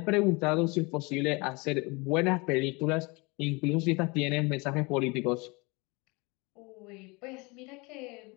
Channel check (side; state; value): right; quieter; 27.0 dB